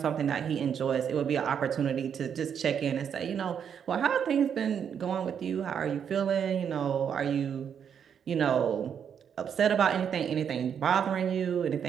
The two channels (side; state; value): left; quieter; 7.9 dB